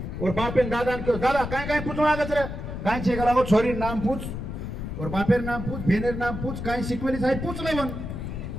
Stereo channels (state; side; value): noise; left; rumble, 6 dB below the sound